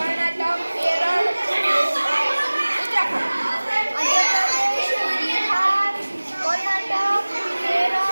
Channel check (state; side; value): inverted; both; correlation -1.00